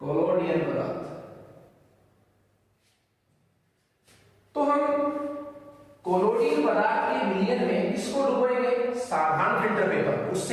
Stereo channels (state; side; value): identical; both; correlation 1.00